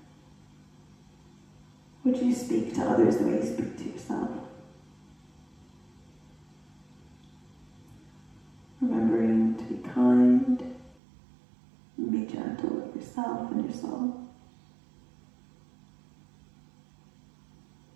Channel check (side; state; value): left; drops out; at 11.0 s